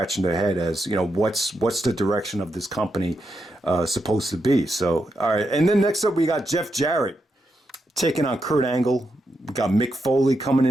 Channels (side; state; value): both; normal; correlation 0.84